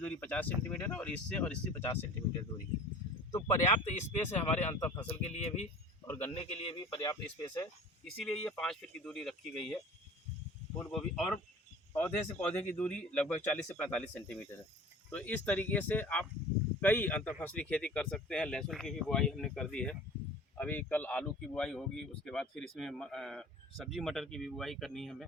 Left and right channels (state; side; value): normal; both; correlation 0.43